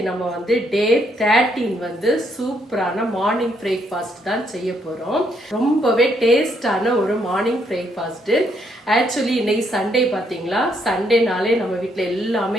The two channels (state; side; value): normal; both; correlation 0.73